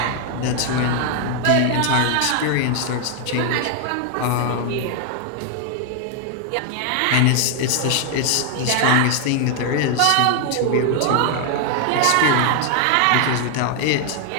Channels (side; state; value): both; different; correlation 0.00